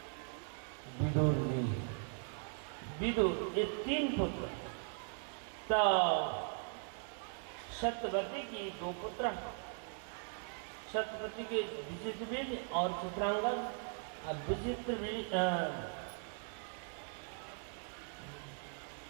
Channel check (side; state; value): left; silent; 51 dB below the other